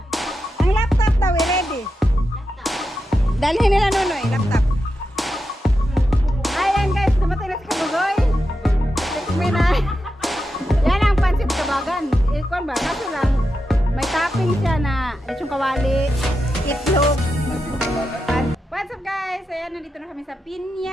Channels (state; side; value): normal; both; correlation 0.88